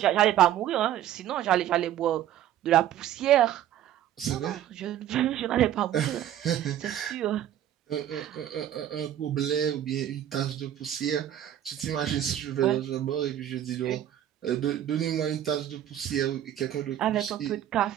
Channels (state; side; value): quieter; left; 11.4 dB